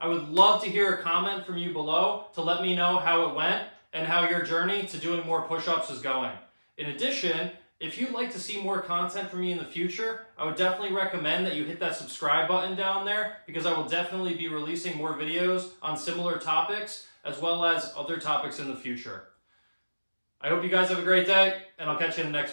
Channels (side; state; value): both; inverted; correlation -1.00